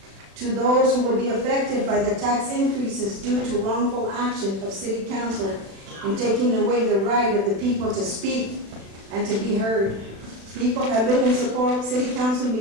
To those who will be affected by the tax increases due to wrongful action of city council in taking away the right of the people to speak and to be heard. People have been in support of city council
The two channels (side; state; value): left; late; 36 ms